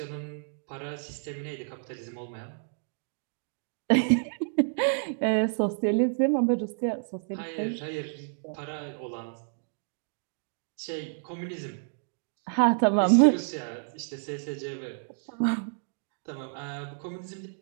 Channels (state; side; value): silent; left; digital silence